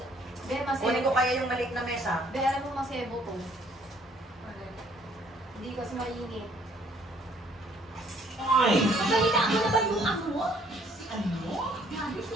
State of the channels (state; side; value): normal; both; correlation 0.62